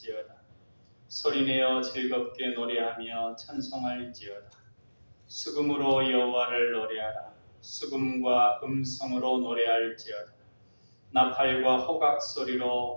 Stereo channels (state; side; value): inverted; both; correlation -1.00